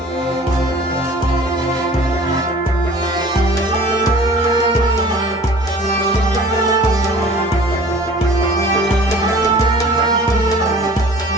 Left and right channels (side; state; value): both; normal; correlation 0.47